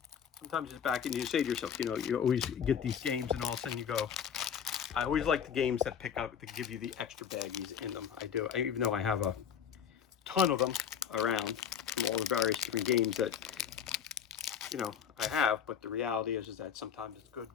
Sometimes it's back and you say to yourself, you know, you always get these games and all of a sudden you go, I always like the games that give you the extra baggies in them. I do, even though I have a ton of them around from all the various different games that, you know, I have, but the reality is that sometimes it's good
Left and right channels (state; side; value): quieter; right; 8.0 dB